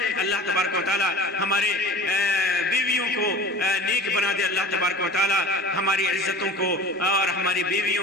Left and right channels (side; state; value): both; normal; correlation 0.41